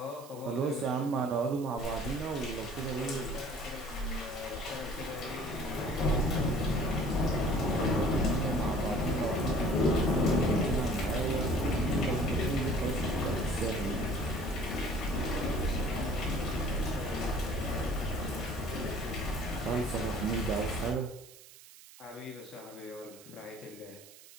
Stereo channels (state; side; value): noise; right; hiss, 20 dB below the sound